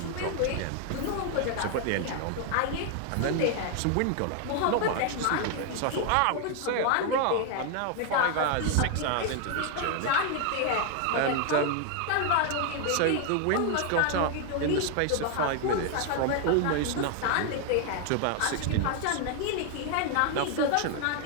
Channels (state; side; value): different; both; correlation 0.00